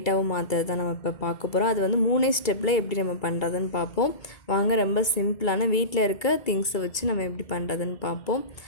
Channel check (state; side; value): late; right; 2.2 ms